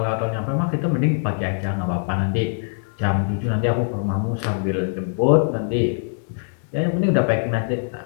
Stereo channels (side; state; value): right; silent; digital silence